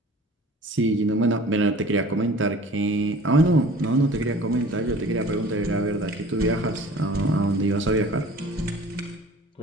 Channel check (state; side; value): normal; both; correlation 0.46